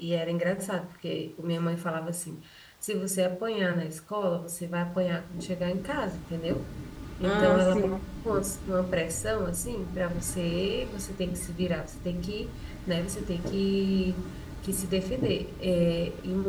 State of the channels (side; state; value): both; identical; correlation 1.00